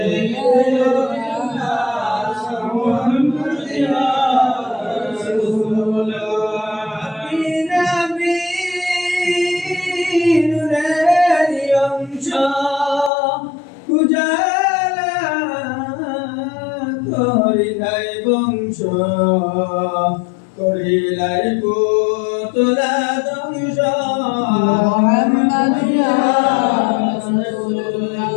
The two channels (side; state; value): right; drops out; at 13.1 s